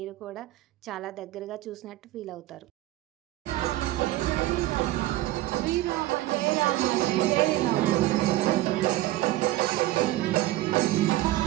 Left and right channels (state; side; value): quieter; left; 16.7 dB